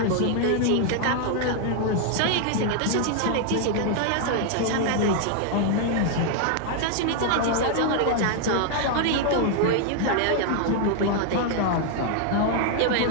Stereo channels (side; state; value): both; different; correlation 0.00